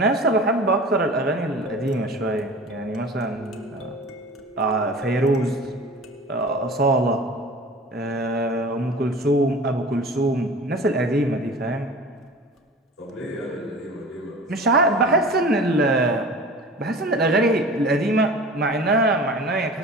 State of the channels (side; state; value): both; normal; correlation 0.39